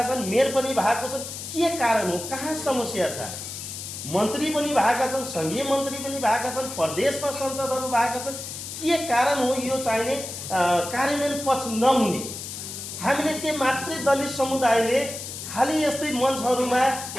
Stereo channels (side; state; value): left; noise; hiss, 8 dB below the sound